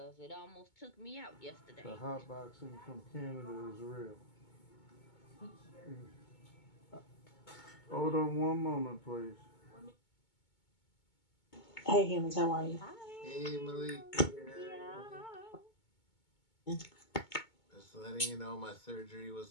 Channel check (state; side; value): late; right; 2.2 ms